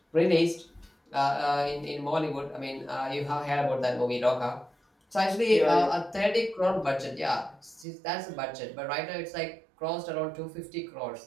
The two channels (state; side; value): drops out; left; at 7.9 s